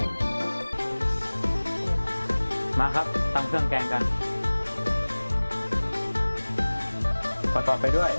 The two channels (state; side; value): inverted; both; correlation -1.00